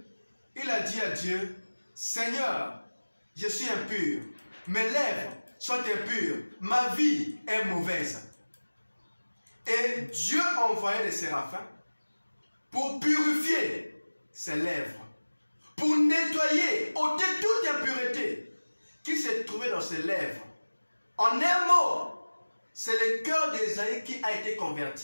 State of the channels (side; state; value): both; inverted; correlation -1.00